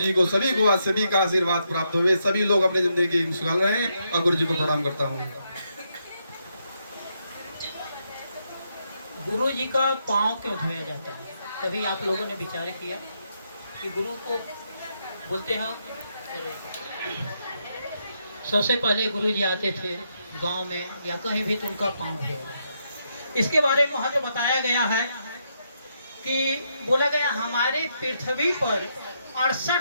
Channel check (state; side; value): inverted; both; correlation -0.79